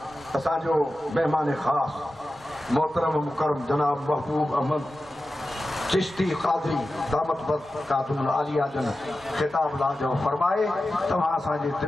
असांजो मेहमान ख़ास मोहतरम मुकरम जनाब महबूब अहमद चिश्ती क़ादरी दामत बरकातुहुल आलिया जन ख़िताब लाजो फरमाए तव्हां असांजे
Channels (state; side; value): normal; both; correlation 0.93